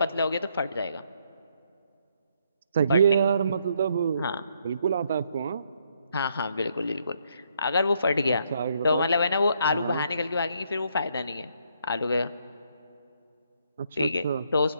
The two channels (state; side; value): inverted; both; correlation -0.72